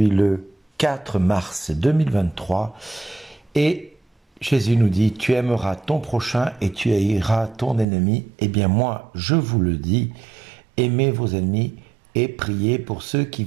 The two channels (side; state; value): left; drops out; at 7.9 s